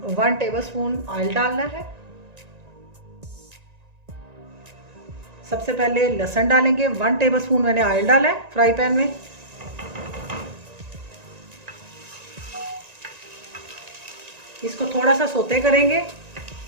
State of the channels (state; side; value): late; left; 1.9 ms